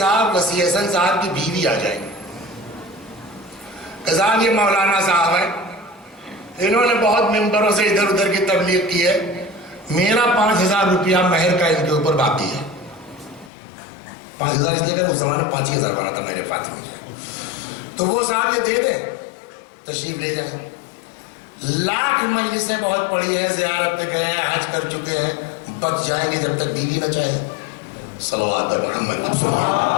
وسیع حسن صاحب کی بیوی آ جائے گی کہ صاحب یہ مولانا صاحب ہیں، انہوں نے بہت ممبروں سے ادھر ادھر کی تبلیغ کی ہے، میرا 5,000 روپیہ مہر کا ان کے اوپر باقی ہے۔ 5,000 اس لیے کہ اس زمانے 5,000 بنا تھا میرے فاطمہ میں، تو وہ صاحب یہ دے دیں، تشریف لے جائیں۔ لاکھ مجلسیں بہت پڑی ہیں، زیارت پہ گئے ہیں، حج کر چکے ہیں، بچ جائیں گے جب تک بیوی نہ چاہے۔ صلوات پر محمد۔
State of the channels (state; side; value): drops out; right; at 13.5 s